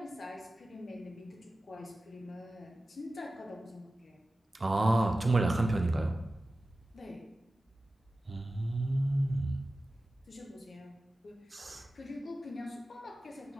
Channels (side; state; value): both; normal; correlation 0.95